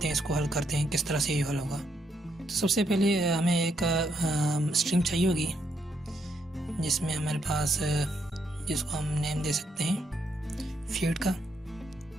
हैं इसको हल करते हैं, किस तरह से ये हल होगा। तो सबसे पहले हमें एक स्ट्रिंग चाहिए होगी जिसमें हमारे पास जिसको हम नेम दे सकते हैं फीड का।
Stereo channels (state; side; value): normal; both; correlation 0.76